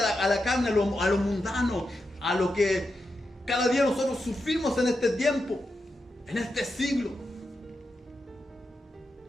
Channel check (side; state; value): both; normal; correlation 0.87